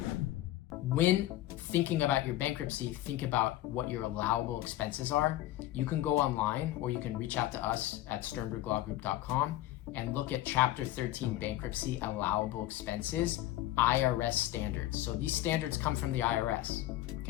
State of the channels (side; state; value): right; quieter; 15.1 dB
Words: When thinking about your bankruptcy, think about what your allowable expenses are. You can go online or you can reach out to us at sternberglawgroup.com and look at Chapter 13 bankruptcy allowable expenses, IRS standards. So these standards come from the IRS.